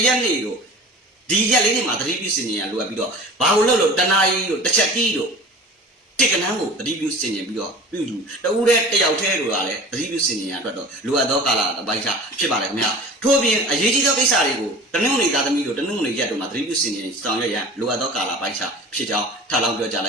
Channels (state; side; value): normal; both; correlation 0.40